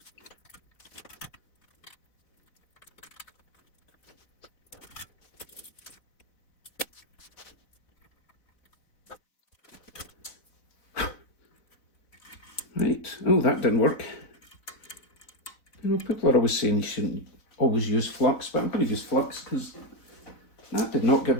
Right, oh that didn't work. You know, people are always saying you shouldn't always use flux, but I'm going to use flux because that did not give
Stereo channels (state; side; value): late; right; 4.0 ms